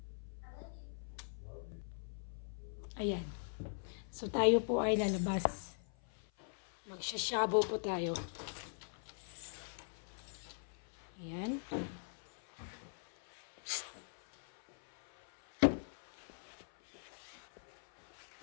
Ayan. So, tayo po ay lalabas. Magsasyabo po tayo. Ayan.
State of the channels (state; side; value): silent; right; 50 dB below the other